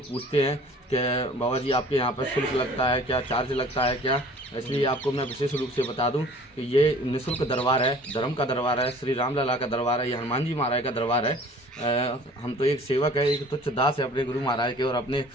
पूछते हैं कि बाबा जी आपके यहाँ पर शुल्क लगता है क्या, चार्ज लगता है क्या, इसलिए आपको मैं विशेष रूप से बता दूं कि ये निःशुल्क दरबार है, धर्म का दरबार है, श्री राम लला का दरबार है, ये हनुमान जी महाराज का दरबार है। हम तो एक सेवक है, एक तुच्छ दास है अपने गुरु महाराज के और अपने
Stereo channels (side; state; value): both; normal; correlation 0.49